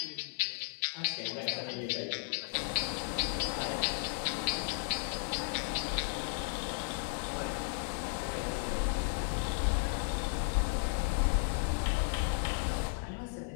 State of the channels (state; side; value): silent; right; 55 dB below the other